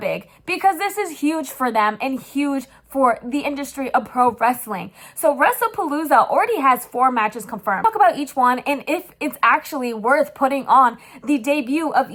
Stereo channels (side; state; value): both; identical; correlation 1.00